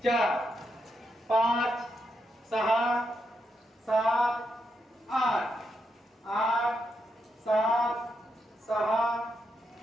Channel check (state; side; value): normal; both; correlation 0.82